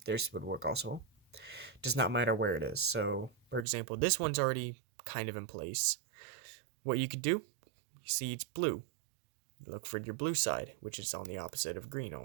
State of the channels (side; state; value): left; drops out; at 3.7 s